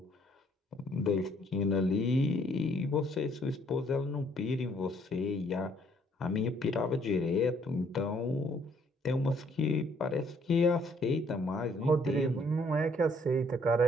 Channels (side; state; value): both; normal; correlation 0.65